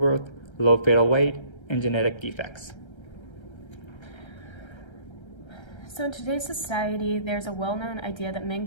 low fetal weight, and genetic defects. So in today's society, there's a well-known idea that men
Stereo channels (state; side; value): late; right; 1.3 ms